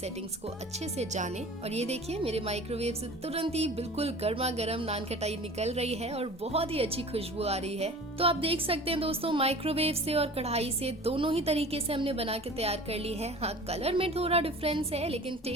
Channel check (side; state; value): both; normal; correlation 0.41